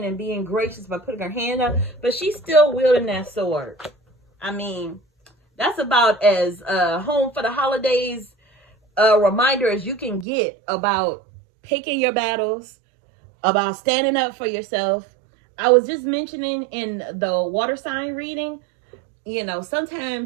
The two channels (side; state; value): left; drops out; at 10.2 s